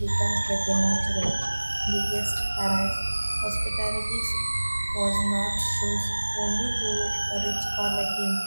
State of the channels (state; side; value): inverted; both; correlation -1.00